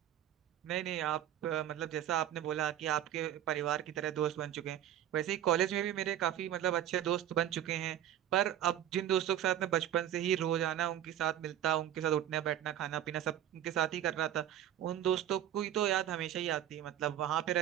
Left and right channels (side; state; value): left; quieter; 11.3 dB